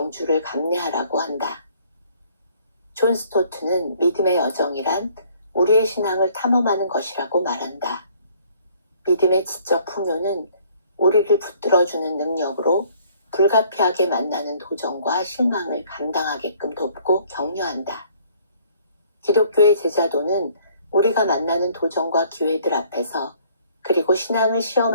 감내하라고 한다. 존 스토트는 믿음의 여정이란 우리의 신앙을 탐험하는 것이라고 말한다. 믿음의 지적 풍요는 우리를 붙들어주는 능력으로 불가피하게 만나는 도전과 실망을 감당하게끔 돕고 격려한다. 기독교의 제자도는 우리가 만나는 도전과 기회들 앞에서 그리고 신앙을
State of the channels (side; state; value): both; inverted; correlation -0.60